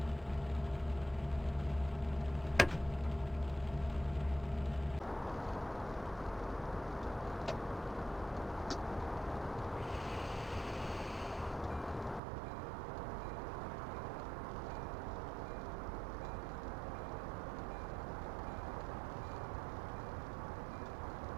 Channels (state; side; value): drops out; left; at 12.2 s